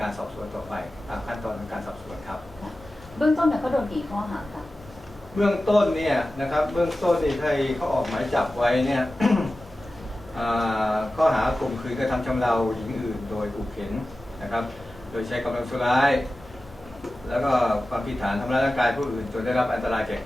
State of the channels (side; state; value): both; normal; correlation 0.95